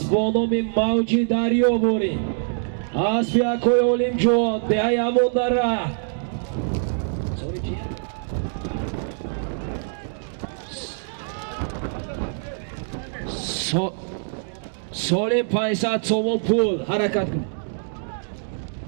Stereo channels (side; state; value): left; silent; digital silence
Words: با نام موجی دریابوری اسب یکوی اولیم جوان دهی همون در ره سالم 500 سومون پول حرکت کن